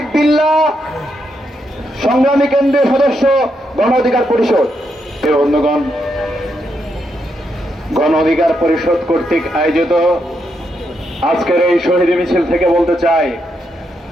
বিল্লাহ, সংগ্রামী কেন্দ্রীয় সদস্য, গণ অধিকার পরিষদ। বন্ধুগণ, গণ অধিকার পরিষদ কর্তৃক আয়োজিত আজকের এই শহীদ মিছিল থেকে বলতে চাই,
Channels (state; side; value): normal; both; correlation 0.80